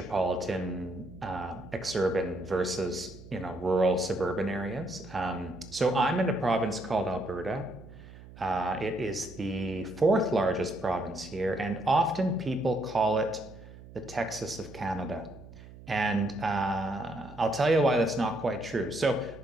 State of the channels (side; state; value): right; noise; hum, 18 dB below the sound